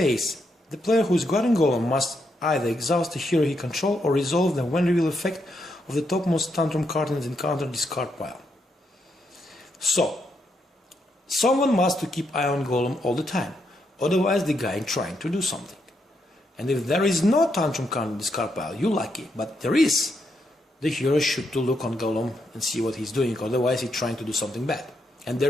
the player who is guarding Golem must either exhaust the hero he controls or resolve the when reveal effect of the topmost tantrum card in the encounter discard pile. So, someone must to keep eye on Golem all the time, otherwise the guy is trying to do something. And if there is no tantrum card in the discard pile, you're lucky, but there is. The hero should to look on Golem and see what he's doing, otherwise he's trying to do something bad. And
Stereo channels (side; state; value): both; normal; correlation 0.80